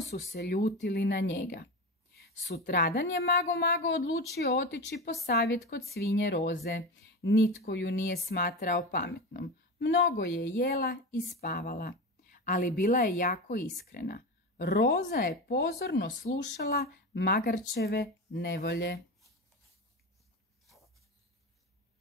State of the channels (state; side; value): normal; both; correlation 0.23